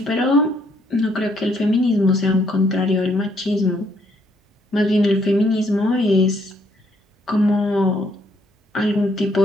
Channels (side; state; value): both; normal; correlation 0.70